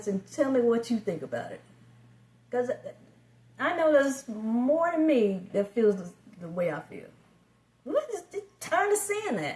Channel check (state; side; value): identical; both; correlation 1.00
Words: and tell me what you think about it. Because I know there's more than me that feels the way I feel. We're just tired of seeing